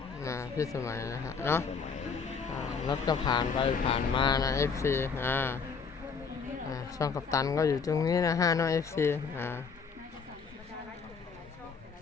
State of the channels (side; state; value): right; quieter; 5.5 dB